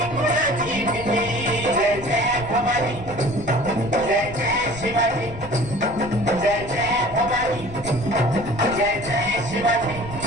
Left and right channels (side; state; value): left; noise; rumble, 13 dB below the sound